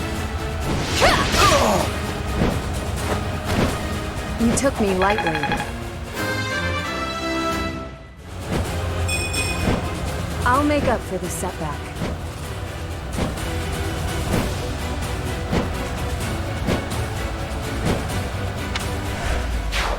You took me lightly. I'll make up for this setback.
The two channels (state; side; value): identical; both; correlation 1.00